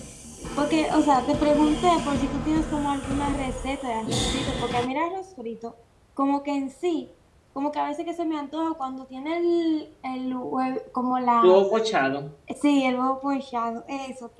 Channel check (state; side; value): identical; both; correlation 1.00